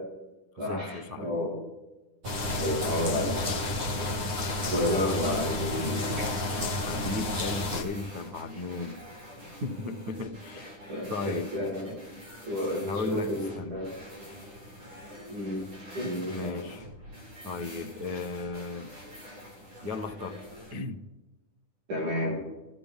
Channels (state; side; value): late; left; 10 ms